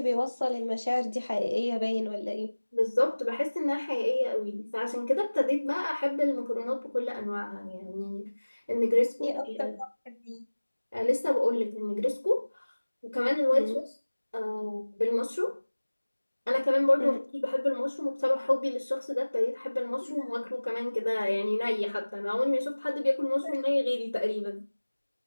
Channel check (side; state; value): both; inverted; correlation -1.00